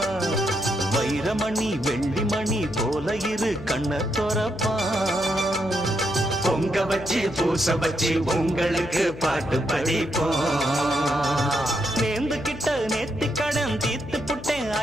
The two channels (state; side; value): noise; left; hum, 14 dB below the sound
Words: வைரமணி வெள்ளிமணி போல இரு கண்ண தொறப்பான். பொங்க வச்சு பூச வச்சு உங்களுக்கு பாட்டு படிப்போம். நேர்ந்து கிட்ட நேத்தி கடன் தீர்த்து புட்டேன்